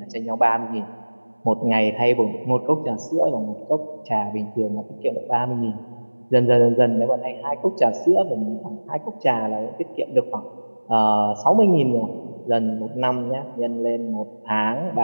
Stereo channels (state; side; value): inverted; both; correlation -1.00